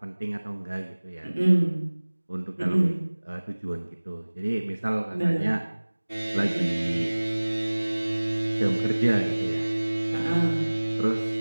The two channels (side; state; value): both; inverted; correlation -1.00